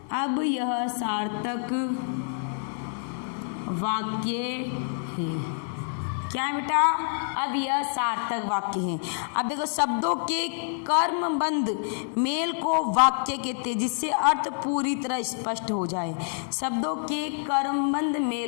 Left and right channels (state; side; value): silent; right; digital silence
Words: वाक्य है। क्या है बेटा? अब यह सार्थक वाक्य है। अब देखो, शब्दों के कर्मबंध मेल को वाक्य कहते हैं, जिससे अर्थ पूरी तरह स्पष्ट हो जाए। शब्दों के कर्मबंध